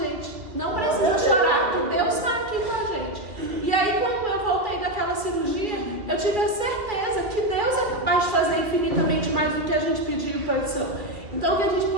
Não precisa chorar, que Deus está aqui com a gente. E aí quando eu voltei daquela cirurgia, eu tive a certeza que Deus é capaz de fazer infinitamente mais do que a gente pediu petição. Então que a gente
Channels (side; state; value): left; late; 2.3 ms